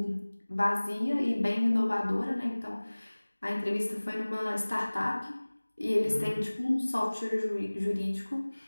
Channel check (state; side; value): inverted; both; correlation -1.00